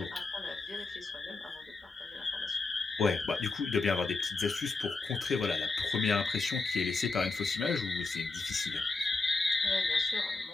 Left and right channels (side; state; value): right; quieter; 3.8 dB